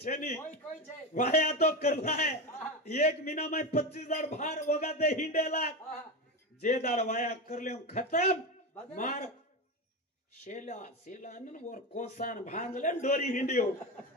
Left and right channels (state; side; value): normal; both; correlation 0.18